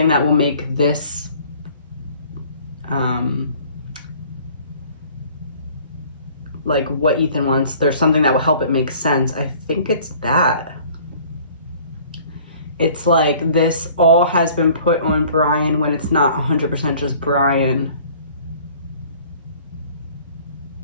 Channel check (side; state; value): both; inverted; correlation -0.52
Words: that will make this like what Ethan wants, there's something that will help it make sense. I think it's that. It's like this all has been put on Brian when it's not 100% just Brian.